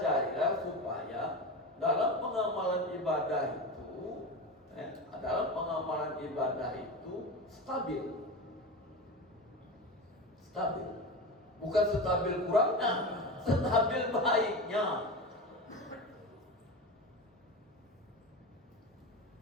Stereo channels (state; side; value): normal; both; correlation 0.24